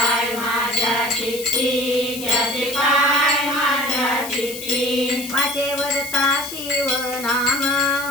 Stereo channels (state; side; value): noise; left; hiss, 10 dB below the sound